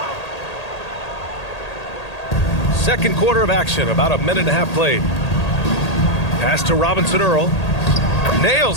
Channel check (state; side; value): late; right; 1.8 ms